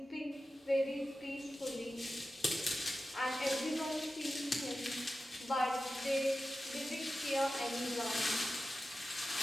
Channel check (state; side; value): normal; both; correlation 0.93